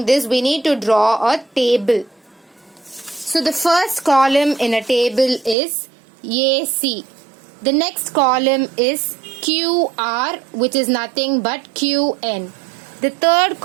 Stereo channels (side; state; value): left; drops out; at 5.6 s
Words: this, we need to draw a table. So the first column in a table is AC. The next column is QR, which is nothing but QN. The third